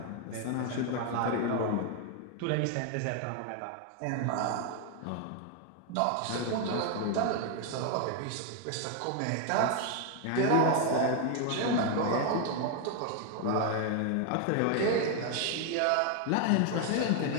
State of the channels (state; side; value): different; both; correlation 0.01